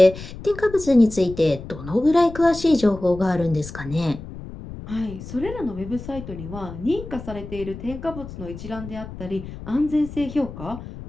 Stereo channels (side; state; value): left; noise; rumble, 12 dB below the sound